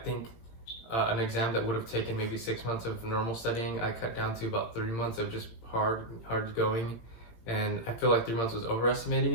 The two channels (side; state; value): right; late; 18 ms